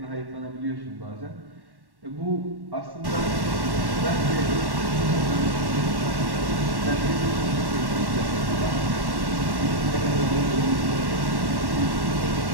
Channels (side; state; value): left; late; 1.1 ms